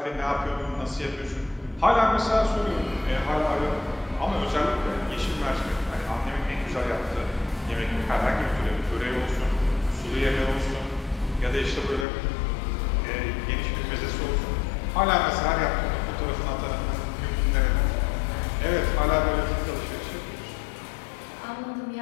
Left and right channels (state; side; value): drops out; right; at 12.1 s